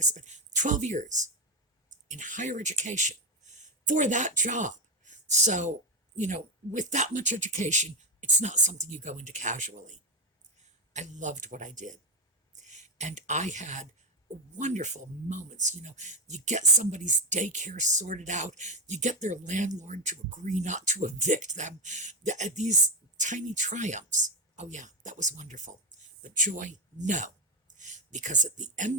spend? 12 years in higher education for that job. So, with that much education, it's not something you go into casually. I loved what I did. And I had wonderful moments. You get somebody's daycare sorted out, you get their landlord to agree not to evict them. These tiny triumphs. Oh, yeah, that was wonderful. But joy, no. Because at the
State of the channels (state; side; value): normal; both; correlation 0.11